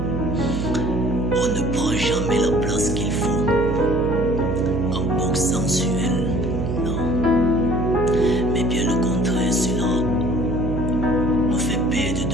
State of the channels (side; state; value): right; noise; hum, 1 dB below the sound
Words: On ne prend jamais la place qu'il faut en boxant sur elle. Non. Mais bien le contraire, cela nous fait perdre